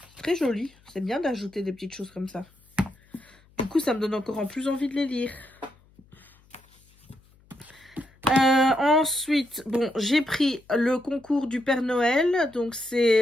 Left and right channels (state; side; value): noise; left; hum, 30 dB below the sound